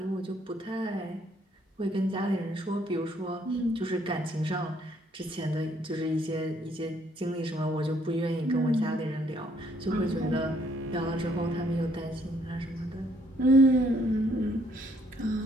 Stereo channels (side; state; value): both; normal; correlation 0.66